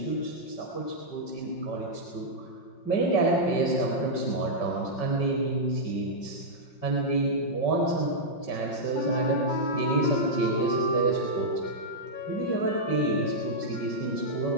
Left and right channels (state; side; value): late; right; 5.6 ms